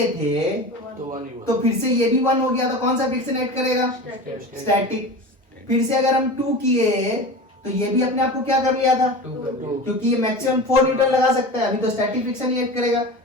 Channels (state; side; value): normal; both; correlation 0.31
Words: थे तो फिर से ये भी 1 हो गया, तो कौन सा फ्रिक्शन एक्ट करेगा? स्टैटिक। फिर से अगर हम 2 किए तो ये भी अपने आप को क्या कर लिया था? क्योंकि ये मैक्सिमम 4 न्यूटन लगा सकता है, अभी तो स्टैटिक फ्रिक्शन ही एक्ट करेगा,